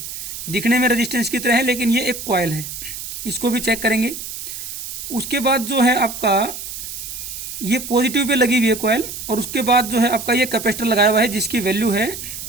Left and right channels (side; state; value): right; noise; hiss, 8 dB below the sound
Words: दिखने में रेजिस्टेंस की तरह है लेकिन ये एक कॉइल है। इसको भी चेक करेंगे। उसके बाद जो है आपका ये पॉजिटिव पे लगी हुई है कॉइल, और उसके बाद जो है आपका ये कैपेसिटर लगाया हुआ है जिसकी वैल्यू है